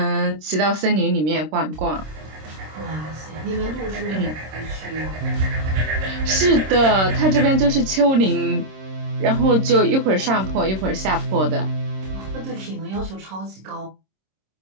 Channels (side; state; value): left; late; 26 ms